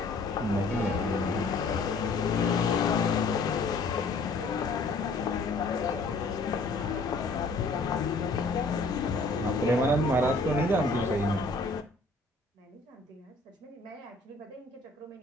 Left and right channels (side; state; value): right; quieter; 3.3 dB